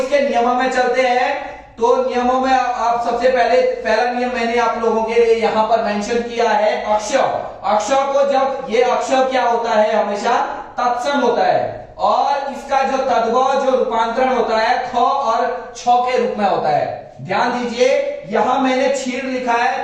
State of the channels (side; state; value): both; identical; correlation 1.00